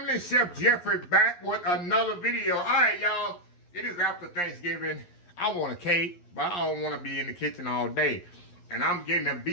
Chef Jeffrey back with another video. All right, y'all. It is after Thanksgiving. I want a cake, but I don't want to be in the kitchen all day. And I'm getting a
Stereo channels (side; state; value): right; late; 11 ms